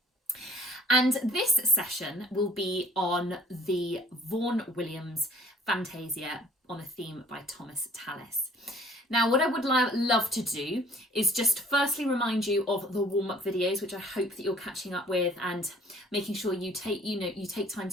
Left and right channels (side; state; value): both; normal; correlation 0.54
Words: And this session will be on the Vaughan Williams Fantasia on a theme by Thomas Tallis. Now, what I would love to do is just firstly remind you of the warm-up videos, which I hope that you're catching up with and making sure you take time